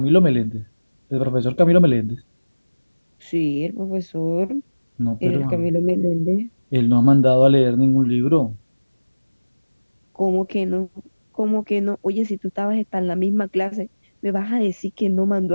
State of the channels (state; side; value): inverted; both; correlation -1.00